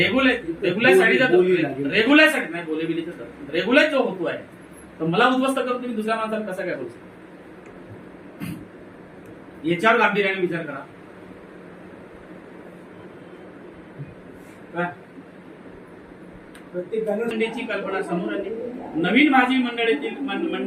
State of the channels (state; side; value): identical; both; correlation 1.00